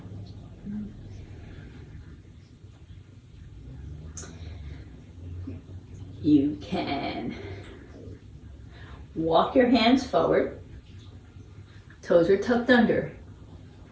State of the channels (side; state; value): both; identical; correlation 1.00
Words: You can walk your hands forward, toes are tucked under,